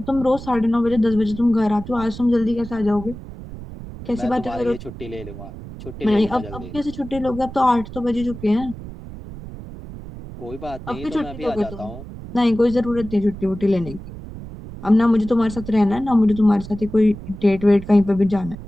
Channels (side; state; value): right; noise; rumble, 13 dB below the sound